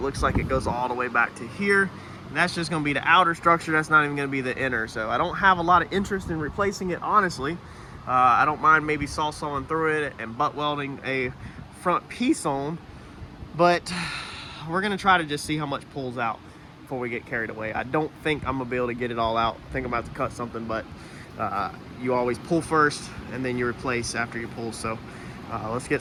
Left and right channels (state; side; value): identical; both; correlation 1.00